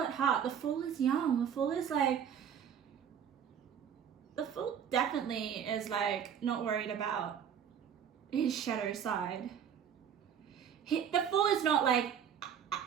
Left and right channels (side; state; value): left; quieter; 8.3 dB